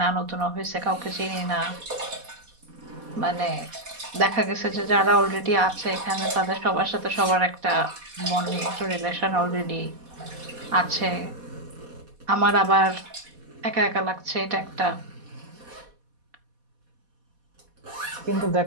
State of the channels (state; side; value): late; left; 4.2 ms